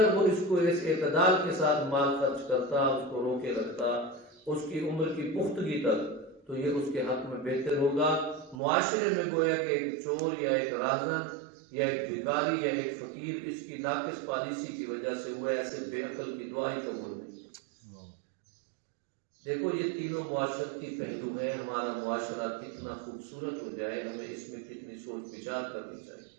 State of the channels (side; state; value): left; drops out; at 8.6 s